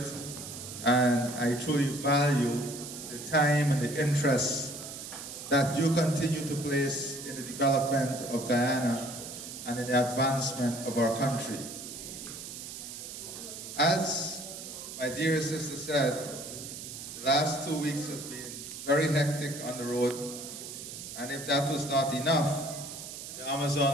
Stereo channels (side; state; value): right; noise; hiss, 10 dB below the sound